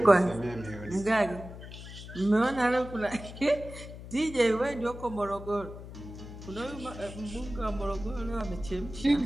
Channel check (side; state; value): left; noise; hum, 13 dB below the sound